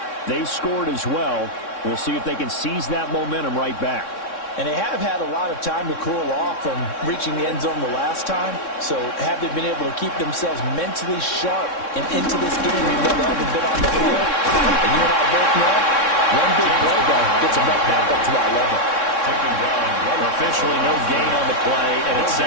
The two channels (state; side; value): late; right; 3.6 ms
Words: they scored as well. We'll see if they can seize that momentum right back. And they have had a lot of time to cool off from reaching the end zone the last time. So have they been able to keep themselves mentally sharp and into this game even though they haven't been on the field? And you and I both know, one big play though gets them right back up to that level. Officially no gain on the play, and it's